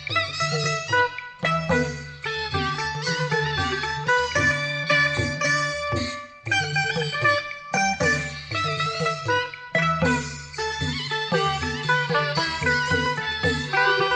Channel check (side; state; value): both; identical; correlation 1.00